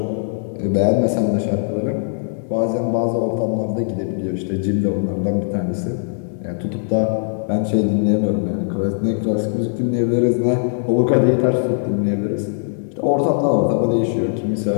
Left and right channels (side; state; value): right; silent; digital silence